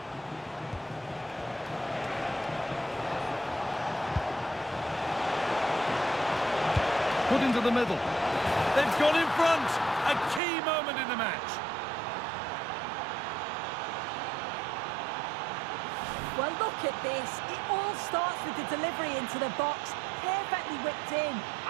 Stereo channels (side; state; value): left; drops out; at 10.4 s